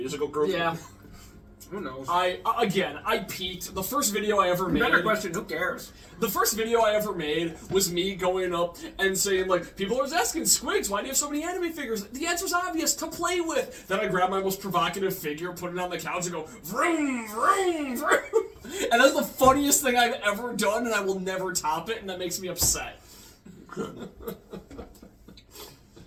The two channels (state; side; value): identical; both; correlation 1.00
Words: Group? Yeah. Who knows? I peaked. The first video I ever made. Better question. Who cares? The first video I ever made was me going up and saying, like, people are asking, Squigs, why do you have so many anime figures? The answer's obvious, to play with. Then I grab my most provocative figure, put it on the couch, and go, vroom, vroom, vroom. And that's the funniest thing I've ever done, and I will never top it, and that makes me upset.